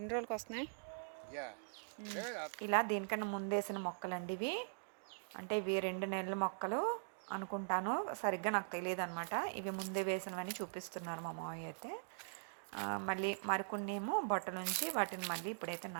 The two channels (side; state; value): left; silent; digital silence